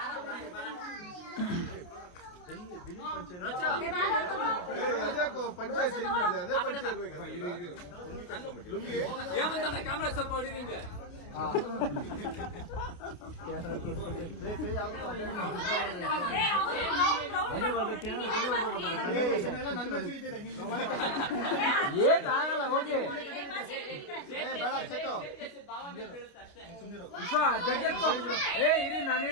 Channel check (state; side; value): late; right; 29 ms